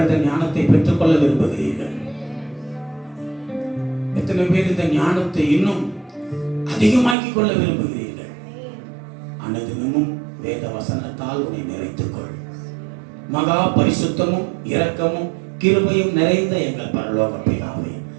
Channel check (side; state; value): left; drops out; at 7.2 s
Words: ஞானத்தை பெற்றுக்கொள்ள விரும்புகிறீர்கள்? எத்தனை பேர் இந்த ஞானத்தை இன்னும் அதிகமாக்கிக் கொள்ள விரும்புகிறீர்கள்? அனுதினமும் வேத வசனத்தால் உன்னை நிறைத்துக் கொள். மகா பரிசுத்தமும் இரக்கமும் கிருபையும் நிறைந்த எங்கள் பரலோக பிதாவே,